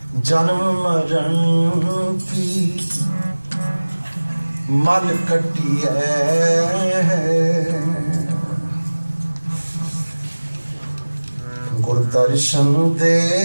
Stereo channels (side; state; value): both; inverted; correlation -1.00